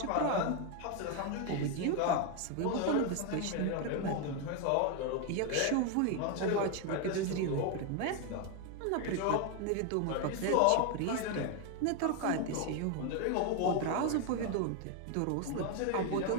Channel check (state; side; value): different; both; correlation 0.01